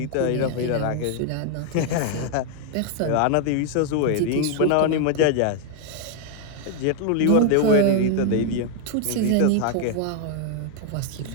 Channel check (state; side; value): different; both; correlation 0.00